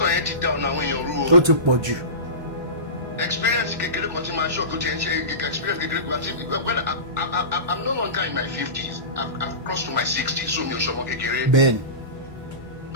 yẹn ti down àwọn èèyàn rú o. Ó ti pọ̀ jù. Experience kékeré kan tí máa ṣọ́ tó ti ń ṣe experience kékeré kan tí I'm no longer in my 50s. I've crossed to my 60s so mi ò ṣọmọ kékeré. Bẹ́ẹ̀ni.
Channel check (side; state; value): left; late; 1.1 ms